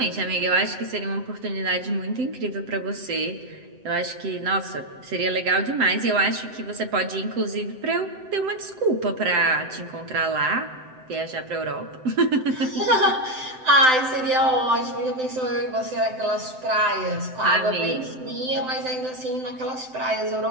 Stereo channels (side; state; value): left; late; 7.8 ms